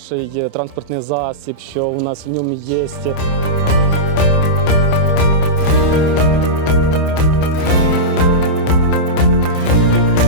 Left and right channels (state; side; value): late; right; 27 ms